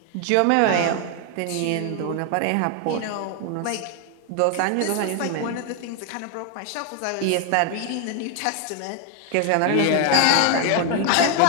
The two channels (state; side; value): different; both; correlation 0.00